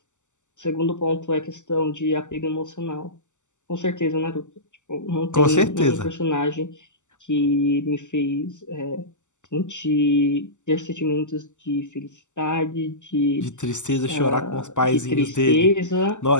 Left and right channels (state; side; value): late; right; 0.84 ms